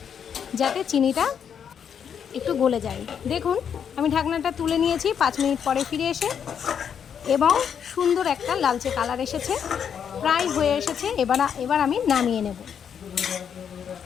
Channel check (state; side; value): quieter; right; 7.9 dB